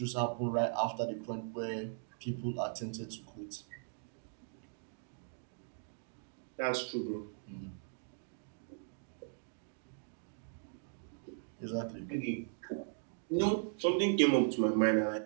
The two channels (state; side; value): silent; left; digital silence